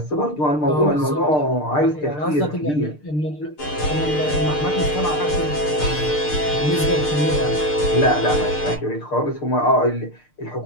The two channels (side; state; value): right; late; 6.7 ms